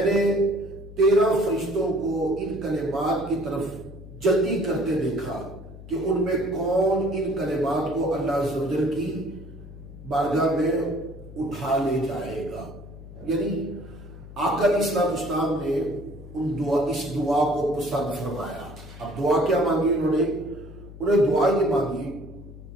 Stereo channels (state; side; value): noise; left; hum, 15 dB below the sound